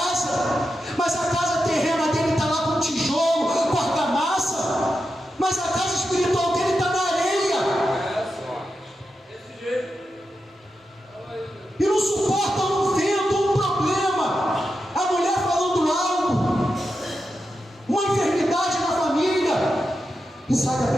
mas a casa terrena dele está lá com tijolo, com argamassa, mas a casa espiritual dele está na areia. E não suporta um vento, um problema, a mulher falando algo, uma enfermidade na família, e sai da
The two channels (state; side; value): normal; both; correlation 0.89